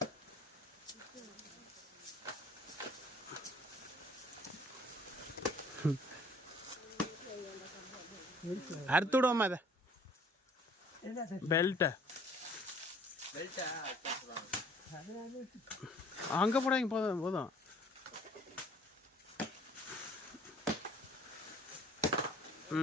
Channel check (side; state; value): both; normal; correlation 0.55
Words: அறுத்து விடுவோமா அதை பெல்ட்டை அங்கே போடாங்க. போதும் போதும்.